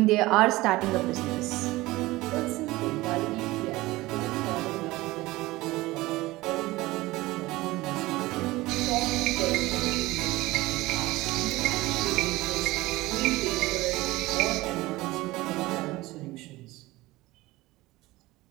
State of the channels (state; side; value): quieter; left; 19.4 dB